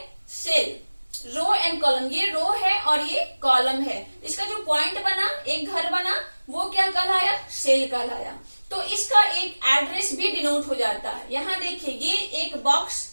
सेल, रो एंड कॉलम, ये रो है और ये कॉलम है। इसका जो पॉइंट बना, एक घर बना, वो क्या कहलाया, सेल कहलाया। तो इसका एक एड्रेस भी डिनोट हो जाता है। यहाँ देखिए ये एक बॉक्स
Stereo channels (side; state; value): both; inverted; correlation -1.00